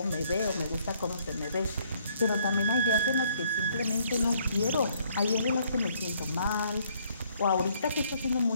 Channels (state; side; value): inverted; both; correlation -0.66